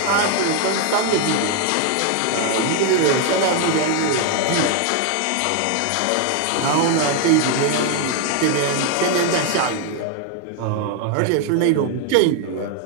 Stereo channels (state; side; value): different; both; correlation 0.01